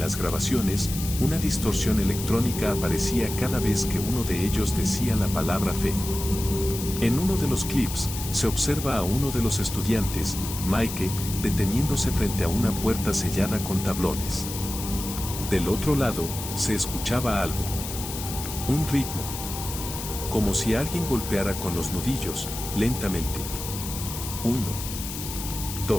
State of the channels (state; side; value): noise; left; hiss, 8 dB below the sound